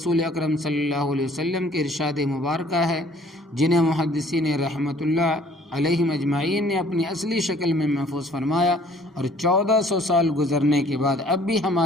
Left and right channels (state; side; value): normal; both; correlation 0.57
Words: اکرم صلی اللہ علیہ وسلم کے ارشاد مبارکہ ہے، جنہیں محدثین رحمۃ اللہ علیہم اجمعین نے اپنی اصلی شکل میں محفوظ فرمایا، اور 1400 سال گزرنے کے بعد اب بھی